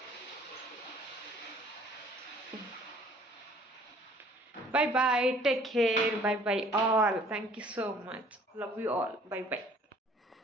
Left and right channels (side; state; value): both; normal; correlation 0.55